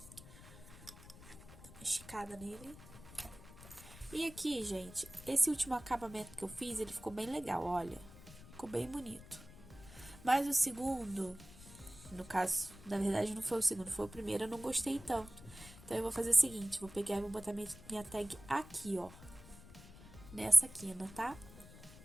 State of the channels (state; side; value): noise; left; rumble, 17 dB below the sound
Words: Dá uma esticada nele. E aqui, gente, esse último acabamento que eu fiz, ele ficou bem legal, olha. Ficou bem bonito. Mas o segundo, no caso, na verdade não foi o segundo, foi o primeiro, eu não gostei tanto. Então, eu vou fazer o seguinte, vou pegar e vou botar minha tag aqui, ó. Nessa quina, tá?